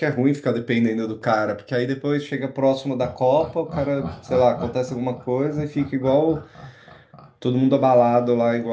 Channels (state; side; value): identical; both; correlation 1.00